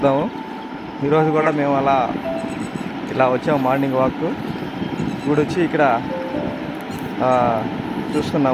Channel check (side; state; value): both; identical; correlation 1.00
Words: ఈరోజు కూడా మేము ఇలా వచ్చాము మార్నింగ్ వాక్. ఇప్పుడు వచ్చి ఇక్కడ